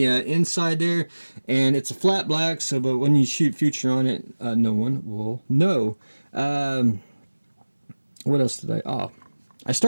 inside there, and it's a flat black, so but when you shoot Future on it, no one will know. What else did I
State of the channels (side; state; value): both; inverted; correlation -1.00